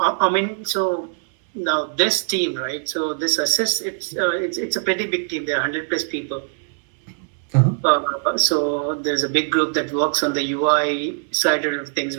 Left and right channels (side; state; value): left; silent; 65 dB below the other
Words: I mean, so now this team, right? So this assist, it's a pretty big team. There are 100 plus people. Uh-huh. So there's a big group that works on the UI side of things,